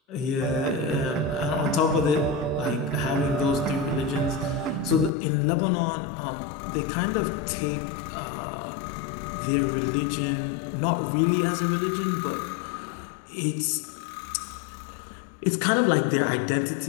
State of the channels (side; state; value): right; drops out; at 5.1 s